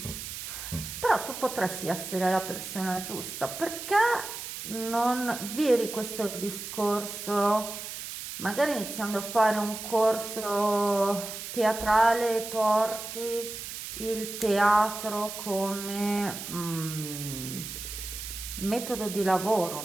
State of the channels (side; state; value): right; noise; hiss, 8 dB below the sound